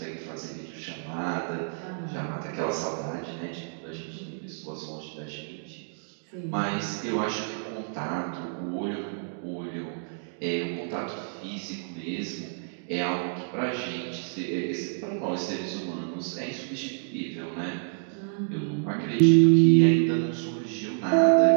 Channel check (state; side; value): silent; left; digital silence